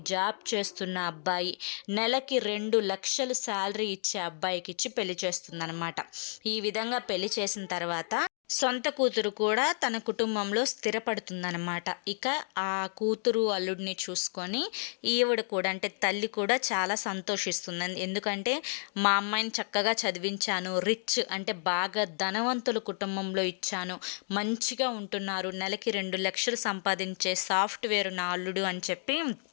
జాబ్ చేస్తున్న అబ్బాయి, నెలకి 2 లక్షలు శాలరీ ఇచ్చే అబ్బాయికి ఇచ్చి పెళ్లి చేస్తుందన్నమాట. ఈ విధంగా పెళ్లి చేసిన తర్వాత సొంత కూతురు కూడా తన కుటుంబంలో స్థిరపడుతుందన్నమాట. ఇక ఆ కూతురు అల్లుడిని చూసుకొని ఈవిడ కూడా, అంటే తల్లి కూడా చాలా సంతోషిస్తుంది. ఎందుకంటే మా అమ్మాయిని చక్కగా చదివించాను, రిచ్ అంటే బాగా ధనవంతుల కుటుంబంలో ఇచ్చాను, మంచిగా ఉంటున్నారు, నెలకి 2 లక్షలు సంపాదించే సాఫ్ట్వేర్ నా అల్లుడు అని చెప్పి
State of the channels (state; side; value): silent; right; 57 dB below the other